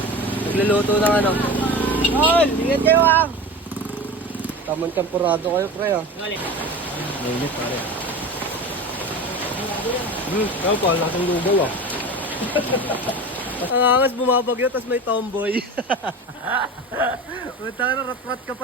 Nagluluto ng ano. Tol! Ingat kayo ah! Tamang tempurado kayo pre ah. Mainit pare. Kaya pa, laking lugaw ah. Ang angas bumabagyo, tas may tomboy. Punta ka na, rat-rat ka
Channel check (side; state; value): both; normal; correlation 0.31